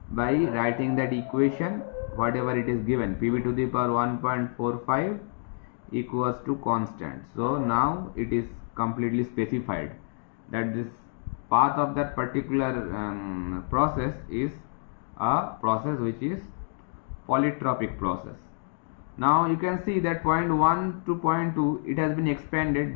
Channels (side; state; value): right; silent; 59 dB below the other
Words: by writing that equation whatever it is given, PV to the power 1.45 equals to constant. So now it is completely specified that this path of that particular process is a process which is polytropic process. Now you can see that point 1 to point 2 it has been expanded